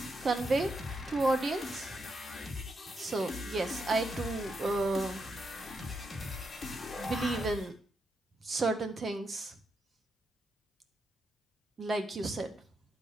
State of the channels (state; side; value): normal; both; correlation 0.82